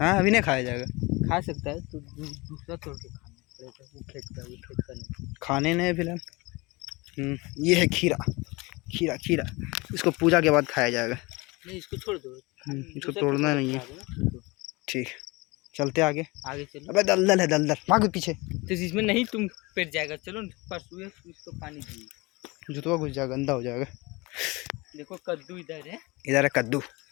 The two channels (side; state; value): right; quieter; 24.3 dB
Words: हाँ, अभी नहीं खाया जाएगा, खा सकता है तो दूसरा तोड़ के खाना पड़ेगा, वो खेत का नहीं। खाने नहीं फिलहाल। ये है खीरा, खीरा खीरा, इसको पूजा के बाद खाया जाएगा। नहीं इसको छोड़ दो, इसको तोड़ना नहीं है। ठीक, चलते आगे। आगे चलो। अबे दलदल है, दलदल, भागो पीछे। तो इसमें नहीं तुम पेट जाएगा, चलो परसों इसको पानी दिए। जुतवा घुस जाएगा, गंदा हो जाएगा। देखो कद्दू इधर है, इधर है कद्दू।